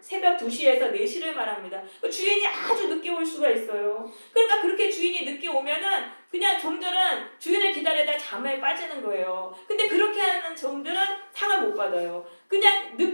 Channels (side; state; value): both; inverted; correlation -1.00